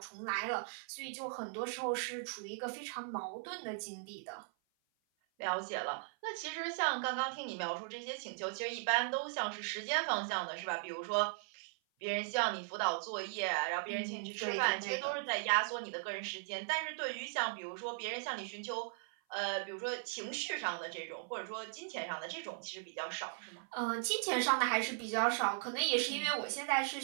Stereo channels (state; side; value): silent; left; 52 dB below the other